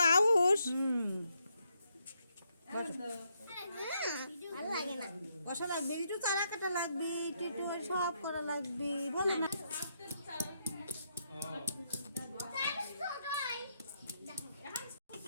আউস কষা লাগবে একটু চারা কাটা লাগবে একটু সব করা লাগবে বলে না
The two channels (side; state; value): both; inverted; correlation -0.78